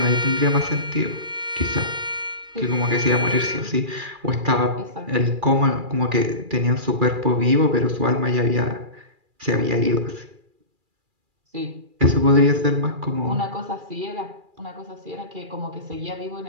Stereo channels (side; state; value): left; late; 2.4 ms